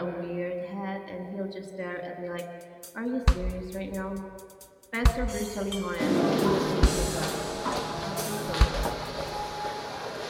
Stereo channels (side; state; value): both; identical; correlation 1.00